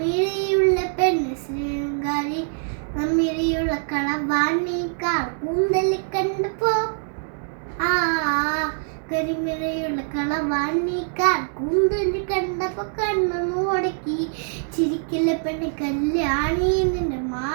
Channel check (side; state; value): left; silent; digital silence